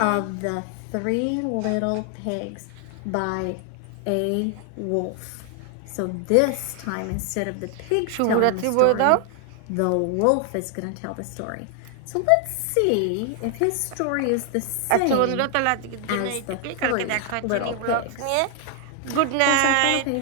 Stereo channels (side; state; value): both; different; correlation 0.00